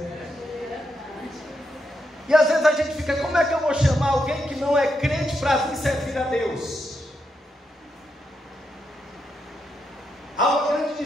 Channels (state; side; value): normal; both; correlation 0.82